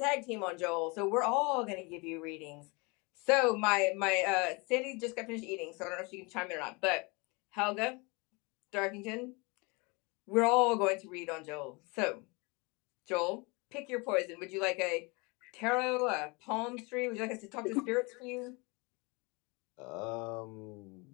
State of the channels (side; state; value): right; quieter; 28.4 dB